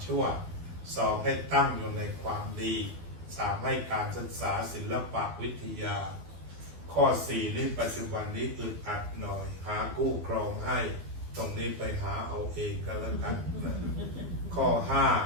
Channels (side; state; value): left; late; 12 ms